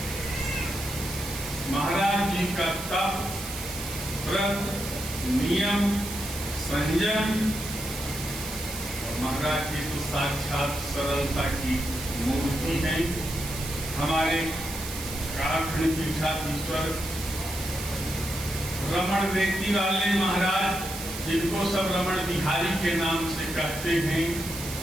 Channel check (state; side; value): noise; right; hiss, 8 dB below the sound